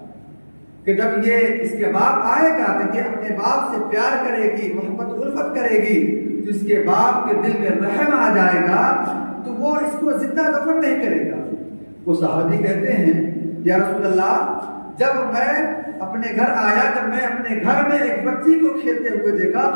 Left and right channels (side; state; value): both; inverted; correlation -1.00